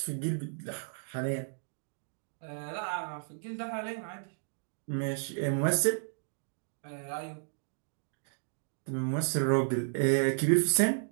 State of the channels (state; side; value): silent; left; digital silence